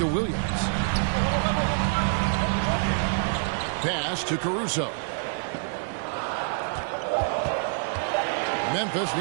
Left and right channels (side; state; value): left; silent; digital silence